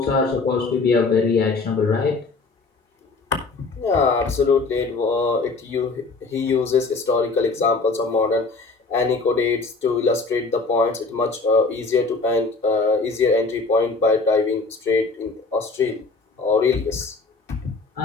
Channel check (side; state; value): right; quieter; 3.9 dB